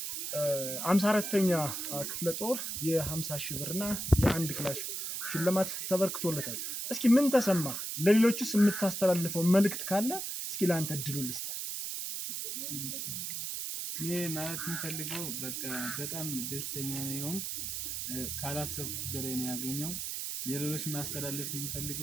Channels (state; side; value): noise; right; hiss, 4 dB below the sound